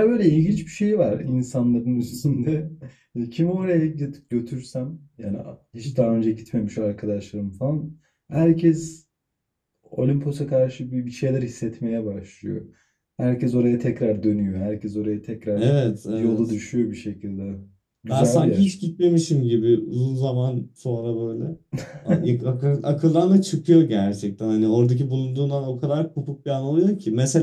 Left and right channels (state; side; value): identical; both; correlation 1.00